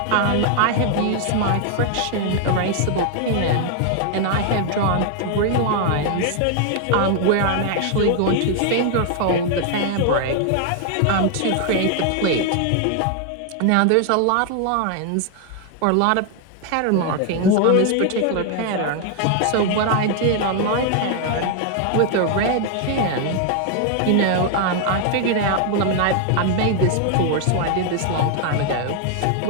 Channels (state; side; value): different; both; correlation 0.00